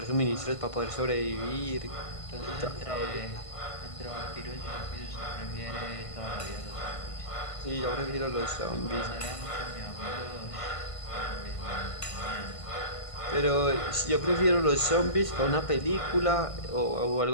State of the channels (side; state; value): right; late; 1.5 ms